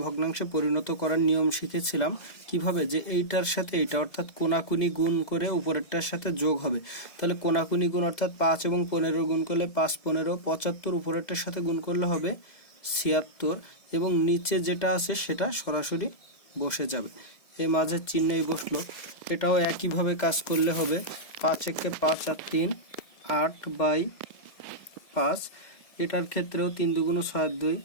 ভগ্নাংশে পরিণত করার নিয়ম শিখেছিলাম কিভাবে, যে এইটার সাথে এইটা অর্থাৎ কোনাকুনি গুণ করে উপরেরটার সাথে যোগ হবে। তাহলে কোনাকুনি গুণ অর্থাৎ 5 এবং 15 গুণ করলে 5 15 75, উপরেরটার সাথে গুণ করলে হবে 76, এবং নিচে যেটা আছে সেটা সরাসরি বসে যাবে। এই মাঝের চিহ্নই বসলো। এটাও একইভাবে কাজ করলে হবে 5 একে 5 আর 3 8/5। এটার ক্ষেত্রেও 3 দুগুণ 6 2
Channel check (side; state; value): right; late; 1.7 ms